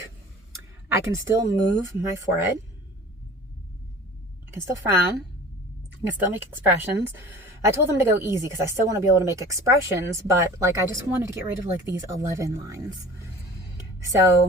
I can still move my forehead. I can still frown. I can still make expressions. I told them to go easy because I still want to be able to make expressions, but like I just wanted to get rid of like these 11 lines.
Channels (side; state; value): both; normal; correlation 0.43